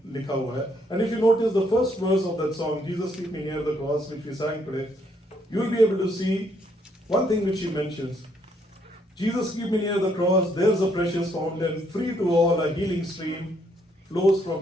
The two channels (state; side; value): normal; both; correlation 0.71